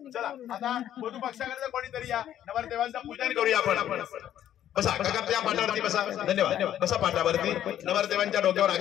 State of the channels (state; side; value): quieter; right; 11.2 dB